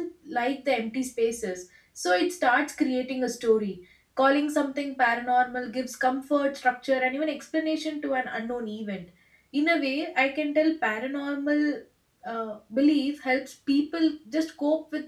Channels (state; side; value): identical; both; correlation 1.00